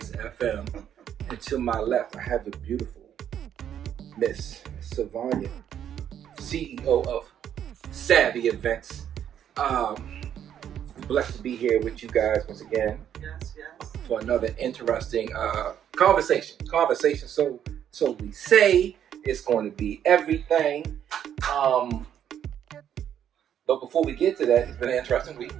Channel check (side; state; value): left; quieter; 9.7 dB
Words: FM. And to my left, I have the beautiful Miss Savanya, CEO of Savvy Events. Blessed to be here with you guys once again. Yes. For another interesting conversation. So we say it's going to be everything. But before we get to that, it's been an interesting week.